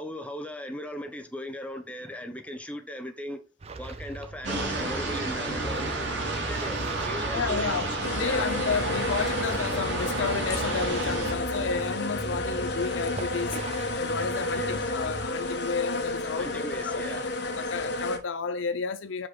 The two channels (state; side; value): normal; both; correlation 0.02